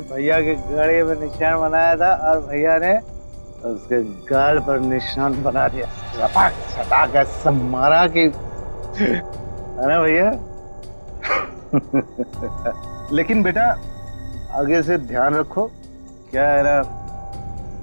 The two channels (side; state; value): both; inverted; correlation -1.00